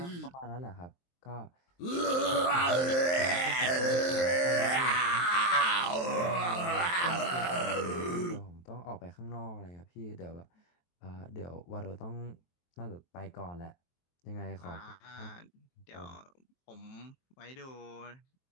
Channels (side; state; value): right; late; 23 ms